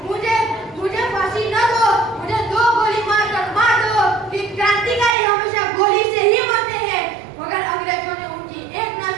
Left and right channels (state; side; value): drops out; left; at 5.2 s